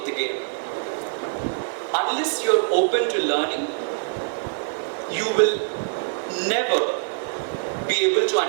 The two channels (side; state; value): left; silent; digital silence